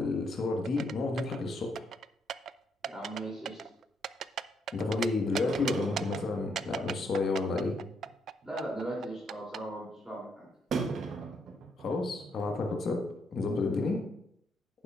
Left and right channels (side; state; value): both; normal; correlation 0.75